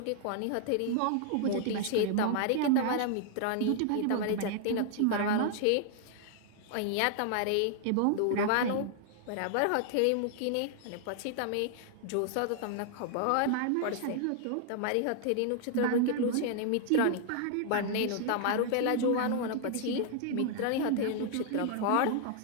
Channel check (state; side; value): different; both; correlation 0.00